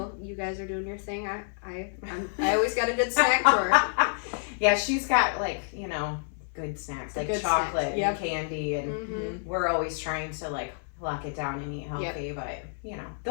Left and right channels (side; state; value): right; silent; 59 dB below the other